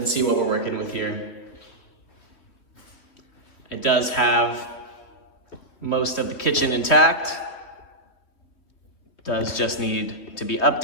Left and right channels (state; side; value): late; right; 2.9 ms